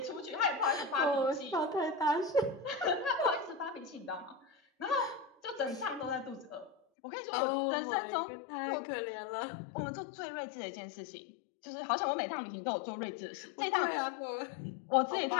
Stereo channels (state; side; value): drops out; right; at 6.8 s